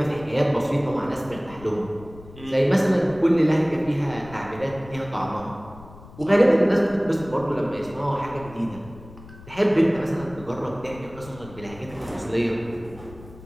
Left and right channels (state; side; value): noise; left; rumble, 18 dB below the sound